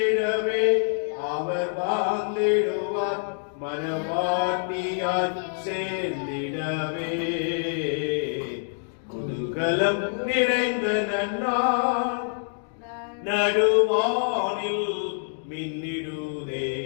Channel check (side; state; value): right; silent; digital silence